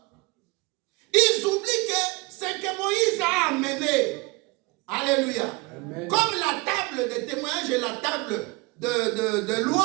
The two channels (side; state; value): left; quieter; 25.5 dB